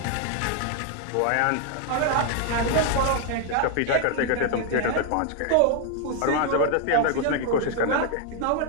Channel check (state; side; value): different; both; correlation 0.00